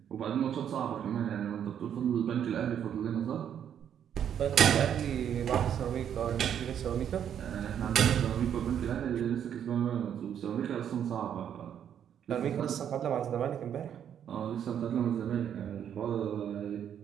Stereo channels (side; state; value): left; quieter; 9.1 dB